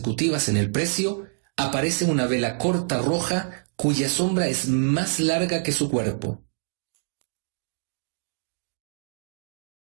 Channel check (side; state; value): left; silent; 61 dB below the other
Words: en el precio, aparece una vela corta roja cuya sombra es más larga que su cuerpo.